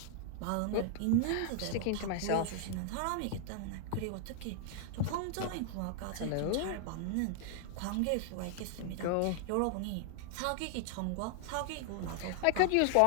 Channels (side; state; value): both; different; correlation 0.00